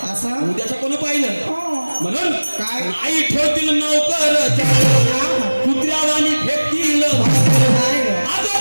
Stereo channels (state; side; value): inverted; both; correlation -1.00